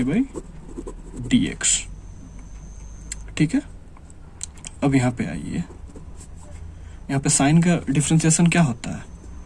D X. ठीक है, अब यहाँ पे आइए, यहाँ पे साइन का डिफरेंशिएशन क्या होता है,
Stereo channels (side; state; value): both; identical; correlation 1.00